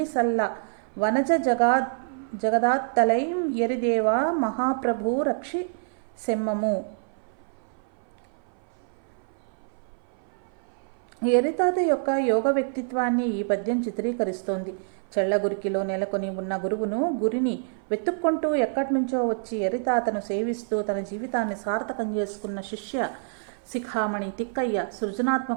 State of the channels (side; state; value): left; silent; 57 dB below the other